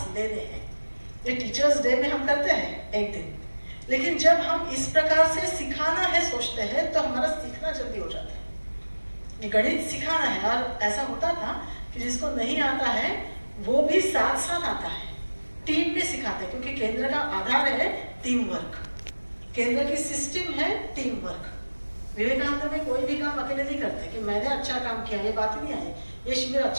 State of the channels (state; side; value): inverted; both; correlation -1.00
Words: लेने हैं? ये टीचर्स डे में हम करते हैं एक दिन, लेकिन जब हम इस प्रकार से सिखाना है सोचते हैं तो हमारा सीखना जल्दी हो जाता है। गणित सिखाना है, और ऐसा होता था कि जिसको नहीं आता है वो भी साथ साथ आता है, टीम में सिखाते हैं, क्योंकि केंद्र का आधार है टीम वर्क, केंद्र की सिस्टम है टीम वर्क। विवेकानंद में कोई भी काम अकेले नहीं करते कि मैंने अच्छा काम किया, ये बात ही नहीं आई। ये शिविर